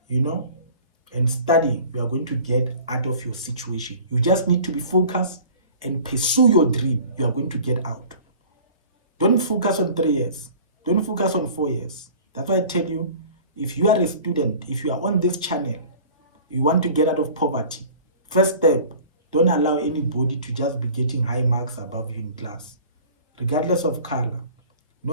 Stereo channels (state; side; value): inverted; both; correlation -0.44